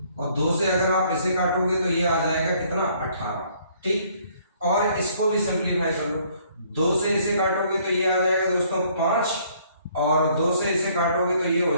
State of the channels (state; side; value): inverted; both; correlation -0.63